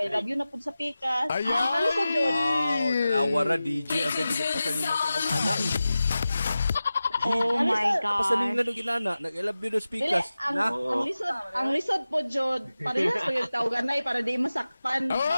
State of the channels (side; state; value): both; inverted; correlation -0.95